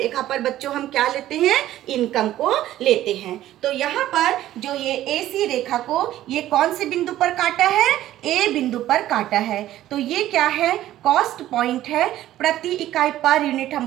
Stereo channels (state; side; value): quieter; left; 13.7 dB